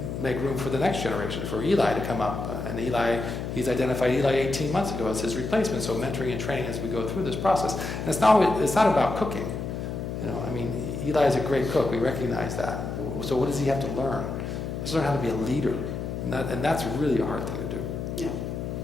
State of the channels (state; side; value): noise; left; hum, 5 dB below the sound